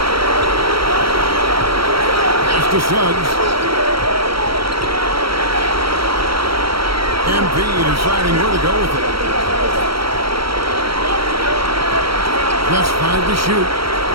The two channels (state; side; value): late; left; 0.75 ms